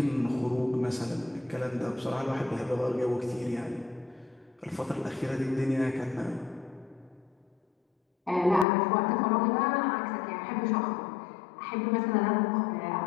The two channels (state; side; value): drops out; right; at 8.7 s